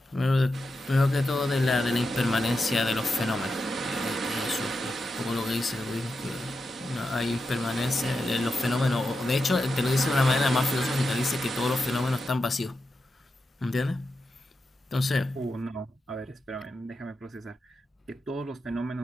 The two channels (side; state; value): both; normal; correlation 0.88